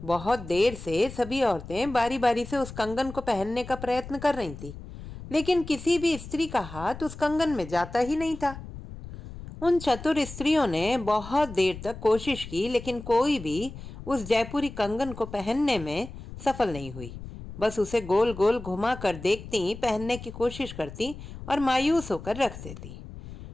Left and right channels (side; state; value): left; noise; rumble, 13 dB below the sound